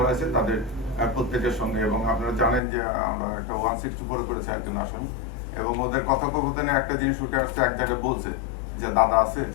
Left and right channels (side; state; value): right; drops out; at 2.6 s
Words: আছে তাদের প্রত্যেকের সঙ্গে, এবং আপনারা জানেন যে আমরা একটা 164 করেছি একজন আসামি, এবং ওদের কথোপকথনে একটা জিনিস উঠে আসছে, এক জায়গায় বলছে যে দাদা আছে,